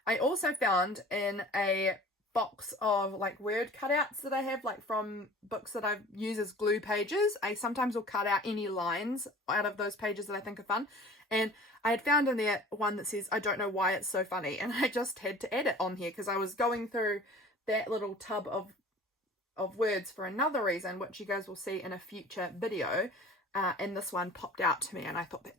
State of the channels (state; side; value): normal; both; correlation 0.44